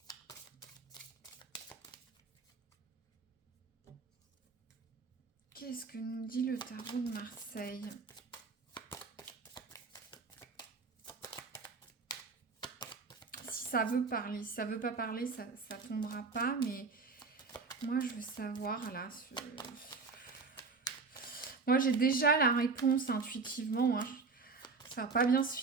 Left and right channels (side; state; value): left; quieter; 4.5 dB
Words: Qu'est-ce que nous dit le tarot de Marseille ? Si ça veut parler, si ça veut pas parler, ça tombera pas. Mais moi, je veux savoir là. Moi, j'ai déjà la réponse intuitivement. Hein. Ça va pas bien se